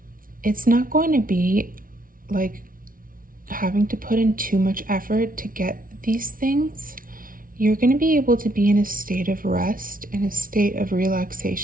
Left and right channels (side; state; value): left; late; 0.41 ms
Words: it's not going to be like having to put in too much effort to get these things. You're going to be able to be in a state of rest, in a state of